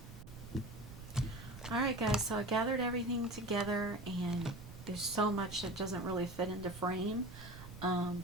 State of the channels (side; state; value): right; noise; rumble, 14 dB below the sound